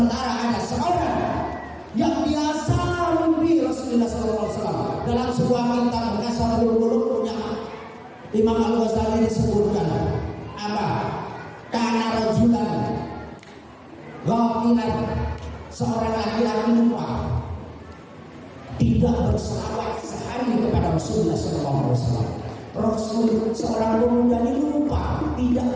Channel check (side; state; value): both; identical; correlation 1.00